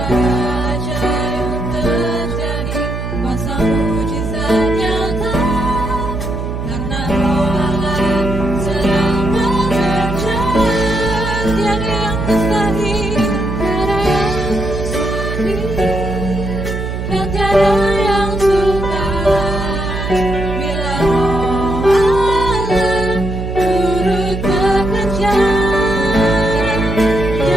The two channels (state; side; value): noise; right; hum, 5 dB below the sound